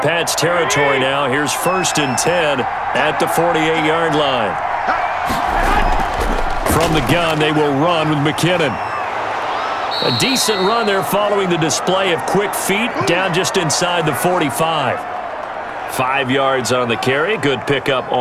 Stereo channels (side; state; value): both; identical; correlation 1.00